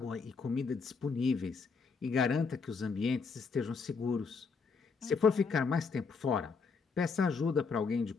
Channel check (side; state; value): right; quieter; 5.0 dB